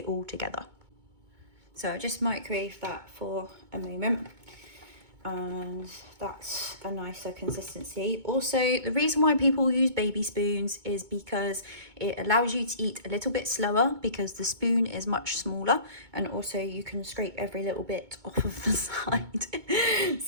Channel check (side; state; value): left; late; 2.2 ms